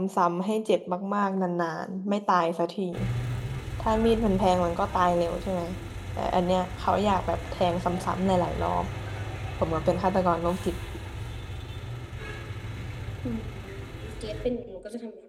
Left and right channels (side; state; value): both; identical; correlation 1.00